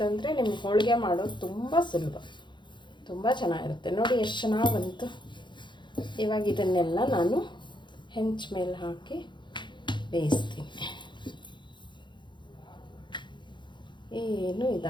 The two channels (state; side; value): late; right; 0.23 ms